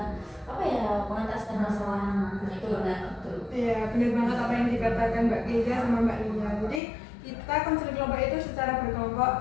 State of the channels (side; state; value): right; drops out; at 6.8 s